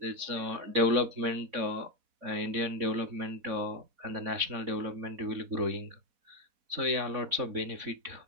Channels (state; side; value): late; left; 4.1 ms